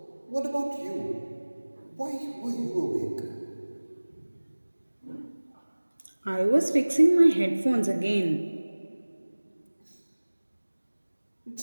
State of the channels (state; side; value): inverted; both; correlation -1.00